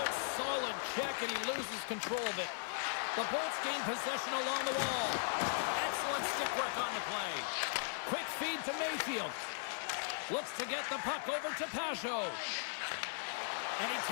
solid check, and he loses control of it. The Bolts gain possession along the wall. Excellent stick work on the play. Quick feed to Mayfield. Looks to get the puck over to Pajot. And he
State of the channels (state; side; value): silent; right; 52 dB below the other